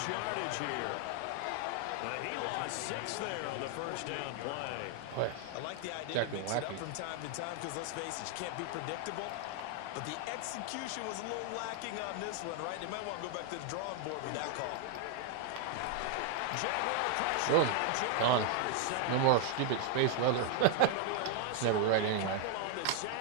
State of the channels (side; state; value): both; different; correlation 0.00